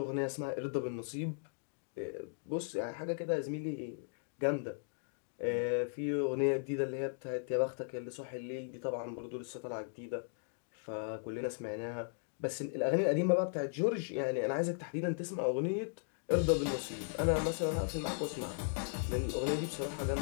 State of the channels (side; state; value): right; silent; digital silence